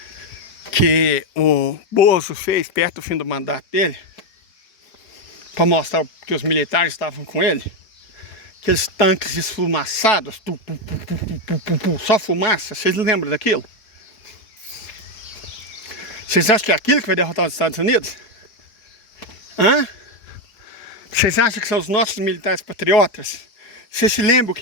que o Bozo fez perto do fim do mandato dele? Para mostrar que os militares estavam com ele? Aqueles tanques esfumaçados, só fumaça. Vocês lembram daquilo? Vocês acham que é aquilo que vai derrotar os Estados Unidos? Hã? Vocês acham que são os nossos militares patriotas? Vocês se lembram o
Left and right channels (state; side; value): late; right; 4.6 ms